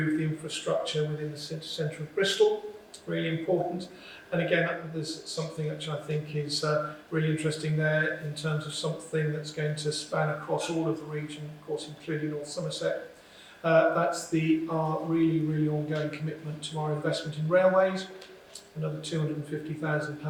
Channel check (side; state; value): both; identical; correlation 1.00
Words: the infrastructure within the centre of Bristol. Really important. And again, there's something which I think is really interesting there in terms of something that's going to span across all of the region, of course, including North Somerset. That's our really, really ongoing commitment to our investment in railways. Another